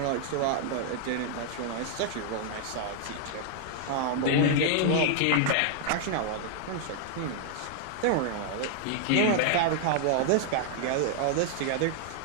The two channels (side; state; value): both; different; correlation -0.01